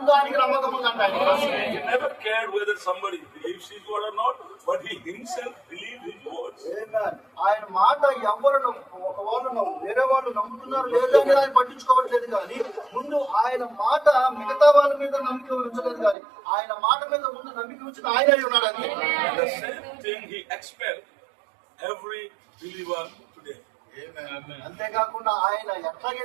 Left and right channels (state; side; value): drops out; left; at 16.2 s